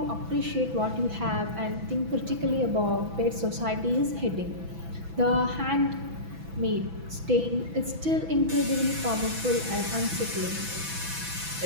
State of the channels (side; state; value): left; late; 6.0 ms